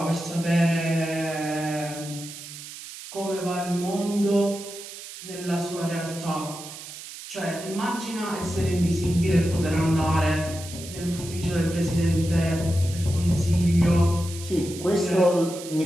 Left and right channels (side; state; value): right; noise; hiss, 13 dB below the sound